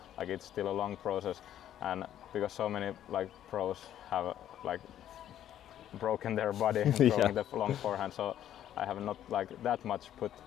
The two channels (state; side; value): quieter; right; 11.2 dB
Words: like it's still a long process. And because so many like pros have like broken their body throwing the long forehand, so I have not like that much put